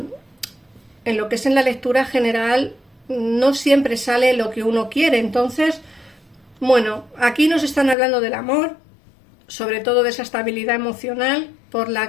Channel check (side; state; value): right; drops out; at 8.0 s